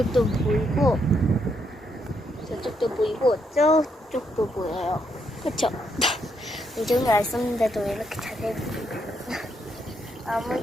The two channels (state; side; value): normal; both; correlation 0.76